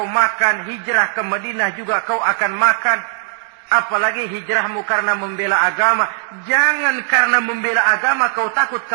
makan, hijrah ke Madinah juga kau akan makan. Apalagi hijrahmu karena membela agama. Jangan karena membela agama kau takut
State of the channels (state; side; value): silent; left; digital silence